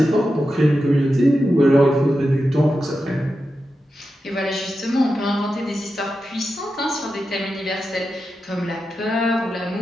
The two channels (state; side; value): normal; both; correlation 0.90